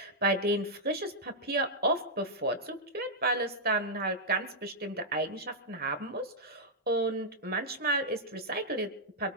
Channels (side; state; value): both; normal; correlation -0.07